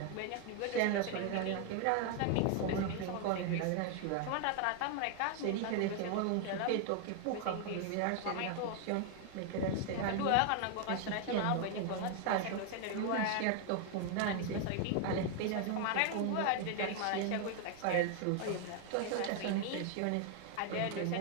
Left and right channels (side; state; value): both; different; correlation 0.00